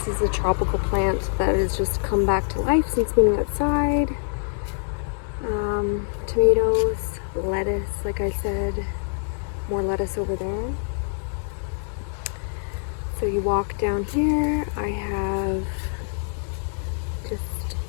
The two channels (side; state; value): right; silent; 62 dB below the other